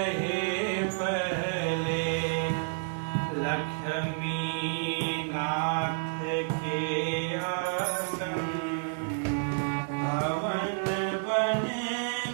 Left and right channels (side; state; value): left; silent; digital silence